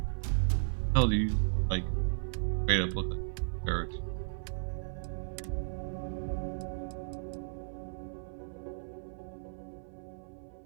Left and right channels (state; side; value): silent; left; 54 dB below the other